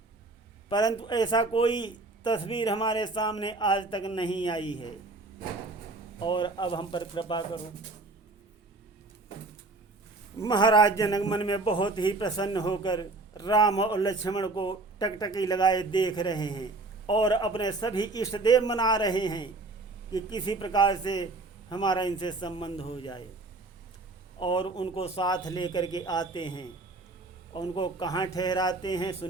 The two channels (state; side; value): quieter; left; 3.3 dB